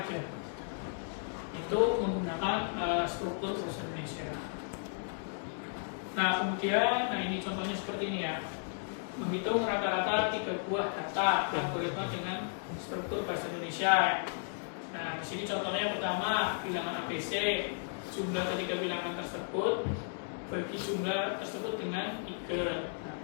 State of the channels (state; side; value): silent; right; digital silence